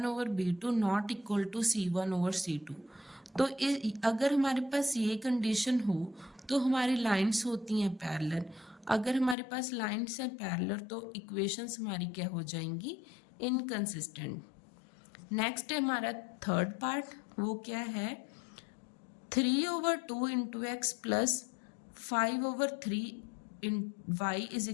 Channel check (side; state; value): right; drops out; at 9.3 s